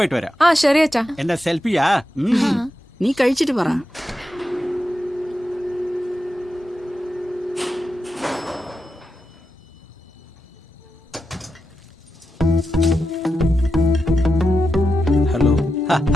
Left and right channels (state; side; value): normal; both; correlation 0.88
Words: വരാം. ശരി അച്ഛാ. എന്റെ സെൽഫിയാ. നീ കഴിച്ചിട്ട് പറ. ഹലോ